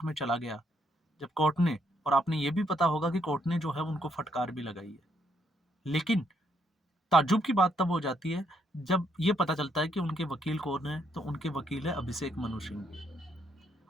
में चला गया, जब कोर्ट ने, और आपने ये भी पता होगा कि कोर्ट ने जो है उनको फटकार भी लगाई है। लेकिन ताज्जुब की बात तब हो जाती है जब ये पता चलता है कि उनके वकील कौन है, तो उनके वकील है अभिषेक मनु सिंघवी।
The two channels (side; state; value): both; normal; correlation 0.74